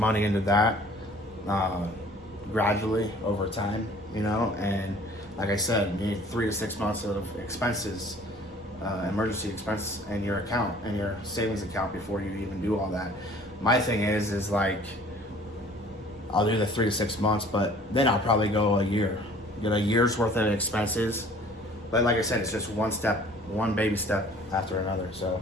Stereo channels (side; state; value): both; normal; correlation 0.52